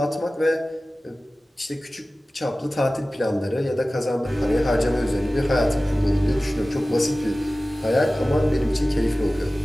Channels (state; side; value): normal; both; correlation 0.97